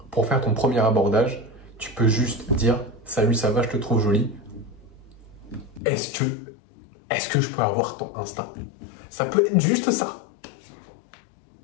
pour faire ton premier abordage, tu peux juste dire « Salut, ça va, je te trouve jolie. Est-ce que je peux avoir ton Insta ?» Ça peut être juste ça.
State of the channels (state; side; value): drops out; right; at 5.8 s